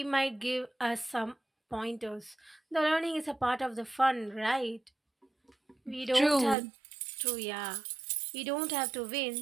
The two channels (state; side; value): drops out; left; at 6.6 s